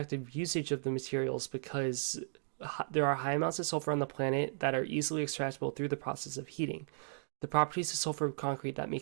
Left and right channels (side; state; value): left; silent; digital silence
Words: usage of the materials because there are high amounts of sulfur on the planet that are easily extractable through the process of heating. The properties of sulfur concrete that